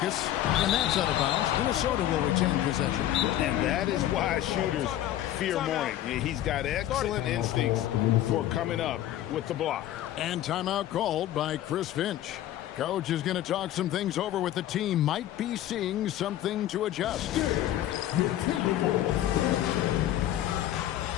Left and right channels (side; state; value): right; quieter; 12.8 dB